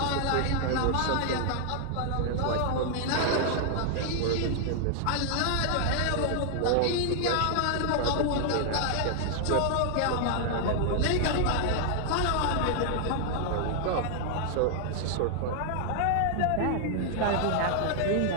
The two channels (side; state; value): both; different; correlation 0.00